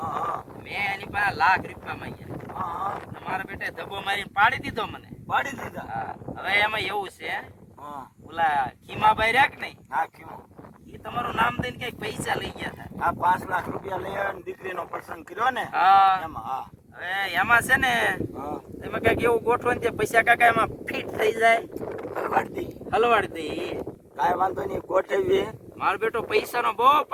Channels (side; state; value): both; identical; correlation 1.00